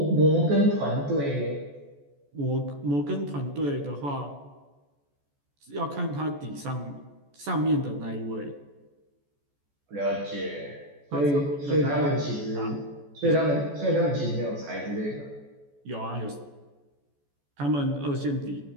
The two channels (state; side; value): late; left; 14 ms